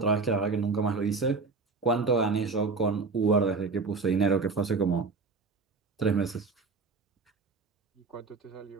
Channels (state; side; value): quieter; left; 4.2 dB